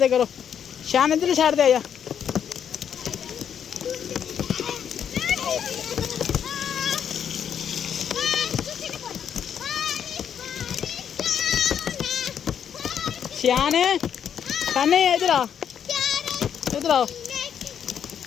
करो। शान इधर साइड से आ जा। शान शानी इधर आ, इधर आओ,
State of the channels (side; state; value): right; quieter; 8.5 dB